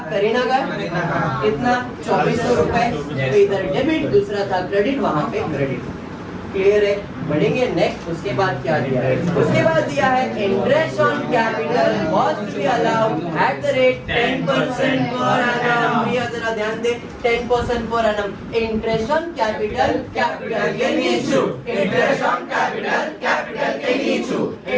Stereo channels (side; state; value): both; identical; correlation 1.00